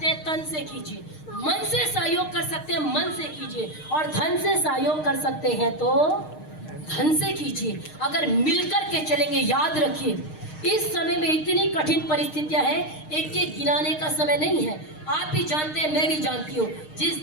हैं, तन से कीजिए, मन से सहयोग कर सकते हैं, मन से कीजिए, और धन से सहयोग कर सकते हैं तो धन से कीजिए। अगर मिलकर के चलेंगे, याद रखिए इस समय में इतनी कठिन परिस्थितियां हैं, एक एक गिनाने का समय नहीं है। आप भी जानते हैं, मैं भी जानती हूँ, जिस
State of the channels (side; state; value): right; late; 6.5 ms